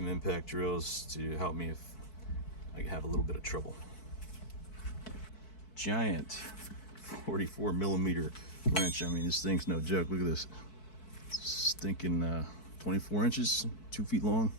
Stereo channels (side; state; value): right; late; 4.6 ms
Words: impact drills to help me if I have a little bit of trouble. Giant 44mm wrench. I mean, this thing's no joke. Look at this. Stinking 24 inches, 2 feet long.